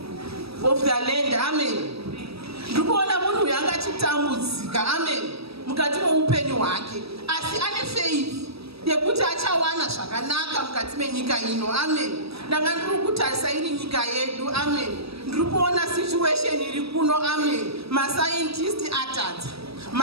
land. Amen. Ndikuona munhu uyu anga achitambudzika. Amen. Mukati meupenyu hwake, asi ane faith yekuti achawana zvakanaka mukati menyika ino. Amen. Ndanga ndiri kutarisa iri nyika yedu. Amen. Ndiri kuona situation iri kuno. Amen. Mascientist atadza,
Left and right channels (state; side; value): late; left; 0.77 ms